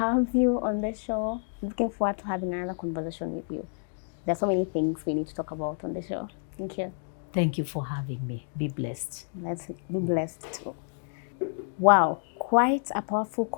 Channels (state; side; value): silent; right; digital silence